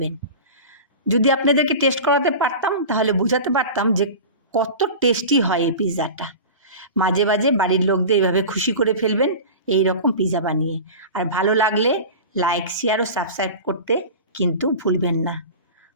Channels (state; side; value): inverted; both; correlation -0.32